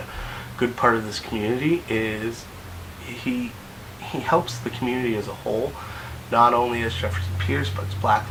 good part of this community. Is he helps the community as a whole, not only as Jefferson Pierce, but as Black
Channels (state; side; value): identical; both; correlation 1.00